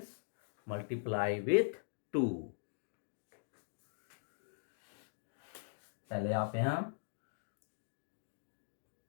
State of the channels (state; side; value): silent; right; digital silence